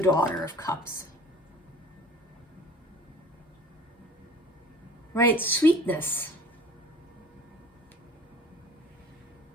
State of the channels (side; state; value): both; normal; correlation 0.46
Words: Daughter of Cups. Right, sweetness,